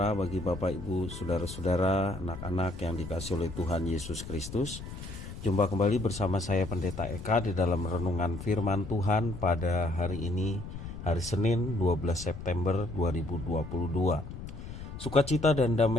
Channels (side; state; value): left; noise; rumble, 10 dB below the sound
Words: bagi Bapak Ibu, Saudara-saudara, anak-anak yang dikasihi oleh Tuhan Yesus Kristus. Jumpa kembali bersama saya Pendeta Eka di dalam renungan firman Tuhan pada hari ini, hari Senin 12 September 2022. Sukacita dan